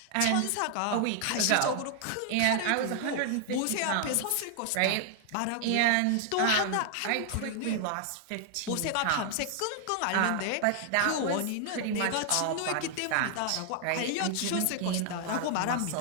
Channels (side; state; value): both; different; correlation 0.00